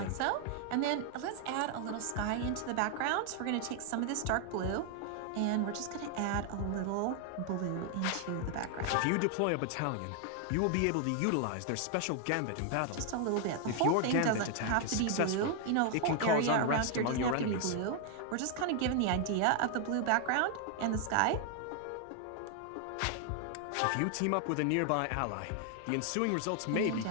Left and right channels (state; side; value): different; both; correlation 0.00